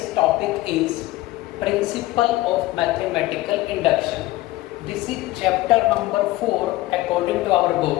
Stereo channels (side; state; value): right; quieter; 17.8 dB